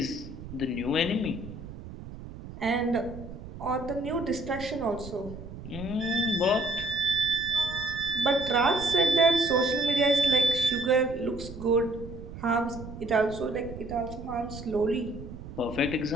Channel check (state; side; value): noise; right; rumble, 12 dB below the sound